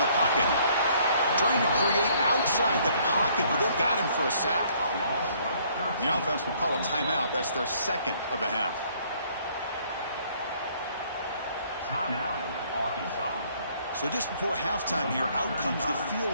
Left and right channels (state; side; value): inverted; both; correlation -0.63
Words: the pocket. Trying to create outside the pocket, but they've got him for a sack. The offense will call a timeout. That's their second of the half. So just before halftime here, out comes the